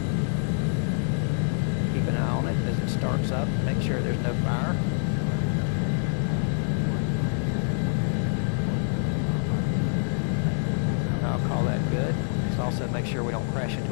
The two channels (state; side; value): silent; right; 61 dB below the other